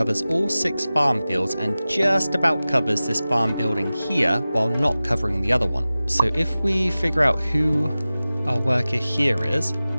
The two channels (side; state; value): both; inverted; correlation -0.97